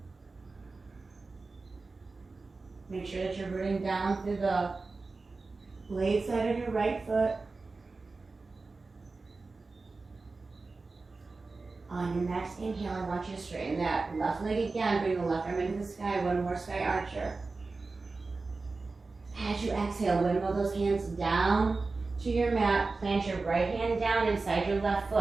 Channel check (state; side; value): quieter; left; 3.8 dB